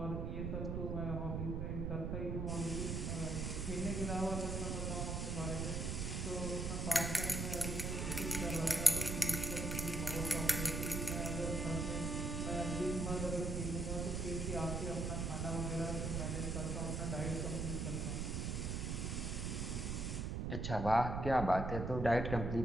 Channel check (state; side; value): noise; right; rumble, 1 dB below the sound